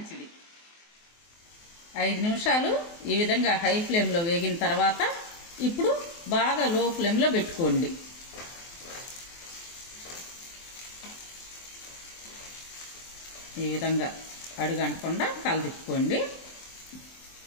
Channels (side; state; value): right; late; 24 ms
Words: 5 నిమిషాలు ఈ విధంగా హై ఫ్లేమ్లో వేగిన తర్వాత ఇప్పుడు బాగా లో ఫ్లేమ్లో పెట్టుకోండి. ఈ విధంగా అడుగంటకుండా కలదిప్పుకోండి.